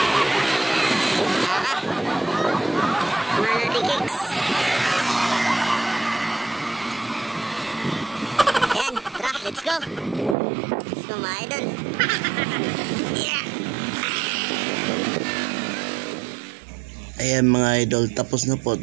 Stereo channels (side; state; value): left; drops out; at 10.4 s